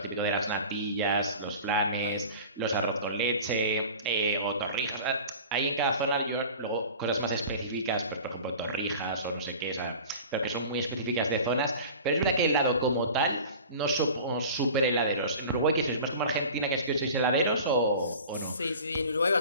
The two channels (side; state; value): both; inverted; correlation -0.39